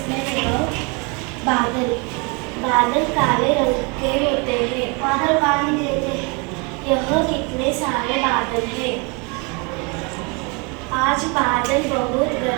about बादल. बादल काले रंग के होते हैं. बादल पानी देते हैं. यह कितने सारे बादल हैं. आज बादल बहुत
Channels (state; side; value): quieter; left; 31.3 dB